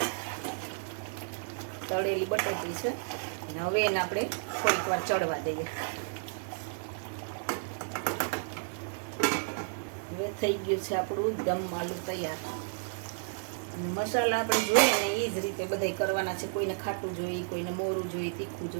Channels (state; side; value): silent; left; digital silence